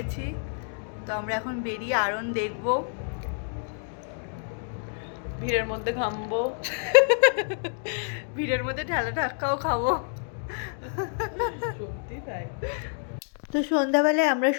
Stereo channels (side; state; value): right; silent; 57 dB below the other